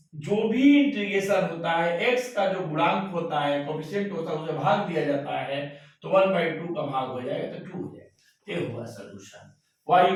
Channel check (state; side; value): identical; both; correlation 1.00